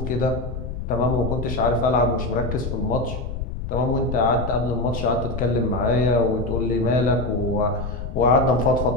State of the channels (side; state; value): left; noise; rumble, 6 dB below the sound